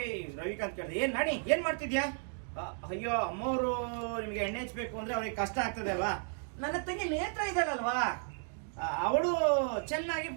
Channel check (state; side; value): silent; left; 55 dB below the other